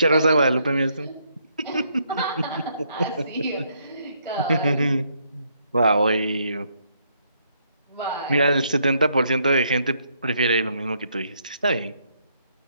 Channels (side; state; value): both; inverted; correlation -0.73